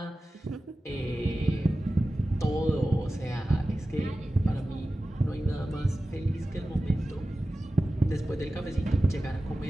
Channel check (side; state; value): both; normal; correlation 0.95